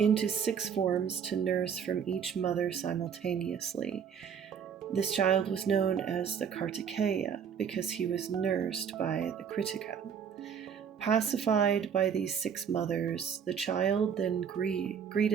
6 forms to nurse from each mother simultaneously. This child was known as the Kartikeya because he was nursed by the Krittika. Pacified by these 6 mothers, the child then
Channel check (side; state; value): left; quieter; 7.5 dB